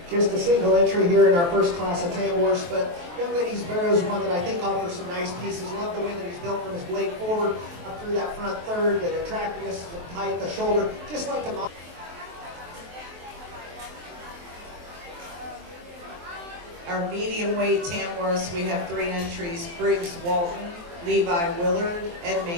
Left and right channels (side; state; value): left; late; 23 ms